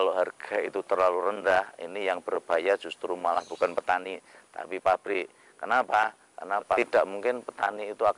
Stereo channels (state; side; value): identical; both; correlation 1.00